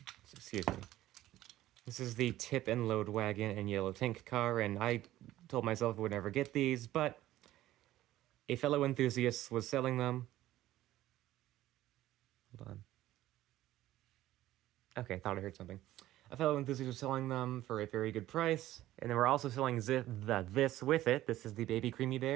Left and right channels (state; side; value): quieter; left; 14.7 dB